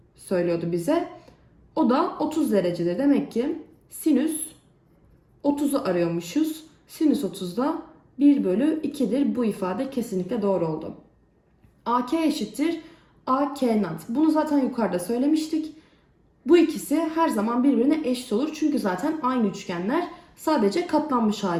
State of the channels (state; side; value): identical; both; correlation 1.00